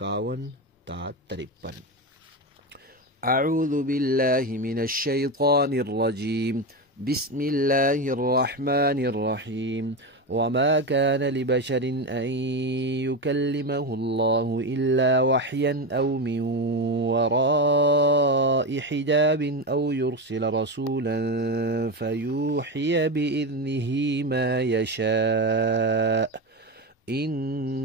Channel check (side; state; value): both; normal; correlation 0.16